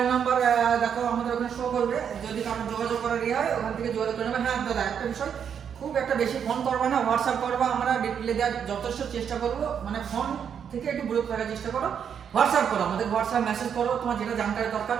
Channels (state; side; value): quieter; left; 7.8 dB